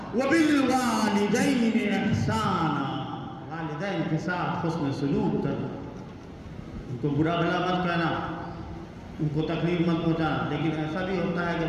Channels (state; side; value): identical; both; correlation 1.00